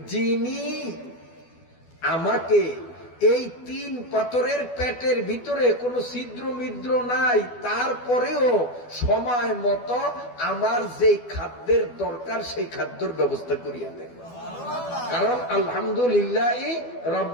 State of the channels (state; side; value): late; right; 12 ms